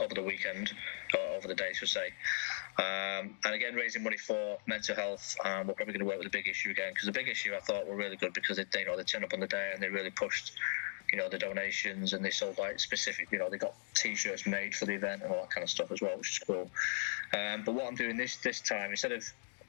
the weekend, or over the day, should say. And again, raising money for mental health. We're probably going to work with the big issue again, because the big issue I thought were really good, because they turned up on the day and they really pushed, the donations, and they sold like specific, they got T-shirts made for the event and all that kind of stuff as well, which is cool. But what I'm doing this time, instead of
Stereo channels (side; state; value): right; silent; digital silence